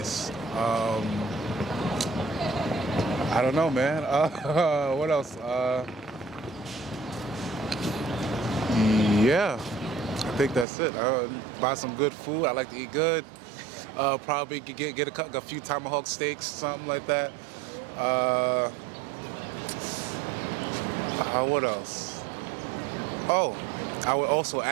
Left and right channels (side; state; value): left; drops out; at 10.7 s